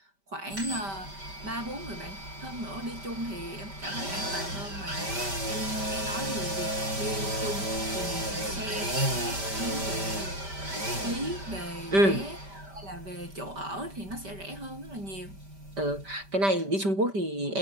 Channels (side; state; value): left; late; 5.1 ms